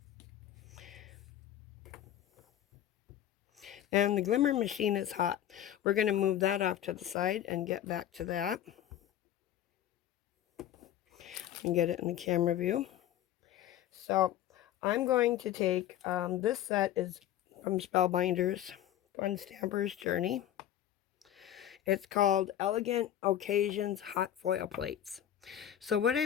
And the Glimmer machine is hot. We're going to move that off to the side and get back to that. And get it in the camera view. So I'm going to take, this set is from Spellbinders, on Stamper's Journey. It's called Elegant Occasions Hot Foil Plates. So what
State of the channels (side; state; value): right; quieter; 11.5 dB